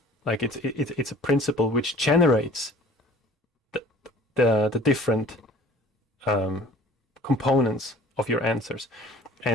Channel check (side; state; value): both; normal; correlation 0.48